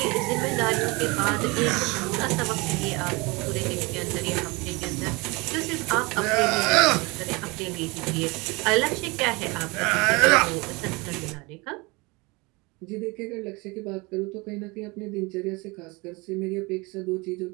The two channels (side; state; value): left; quieter; 25.8 dB